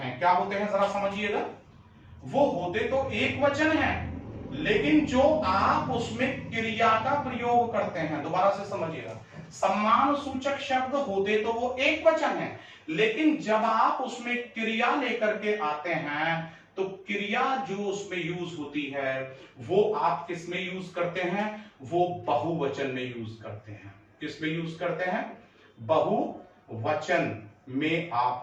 क्या होते हैं जरा समझिएगा, वो होते तो एक वचन हैं, लेकिन जो आप उसमें क्रिया का प्रयोग करते हैं, दोबारा से समझिएगा, सम्मान सूचक शब्द होते तो वो एक वचन है, लेकिन जब आप उसमें क्रिया लेकर के आते हैं तो क्रिया जो उसमें यूज होती है वो आप किस में यूज करते हैं, वो बहुवचन में यूज करते हैं। किस में यूज करते हैं, बहुवचन में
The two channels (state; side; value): identical; both; correlation 1.00